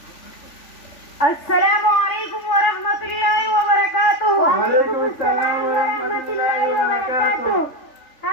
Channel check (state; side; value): late; right; 3.5 ms